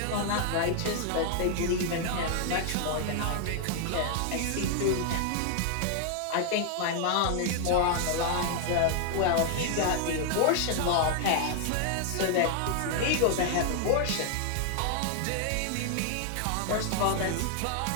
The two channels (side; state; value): both; different; correlation 0.00